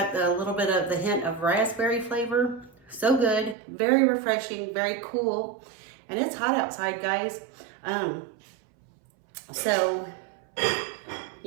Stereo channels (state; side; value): drops out; left; at 3.6 s